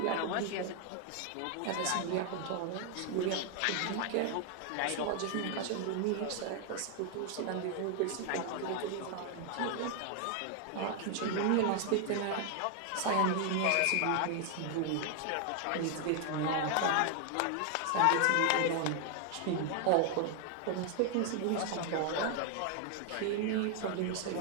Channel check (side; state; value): both; different; correlation 0.00